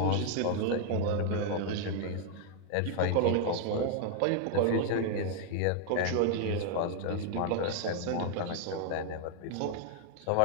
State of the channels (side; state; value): both; different; correlation 0.00